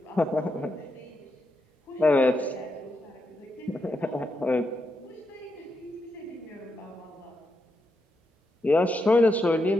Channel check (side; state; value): both; normal; correlation 0.83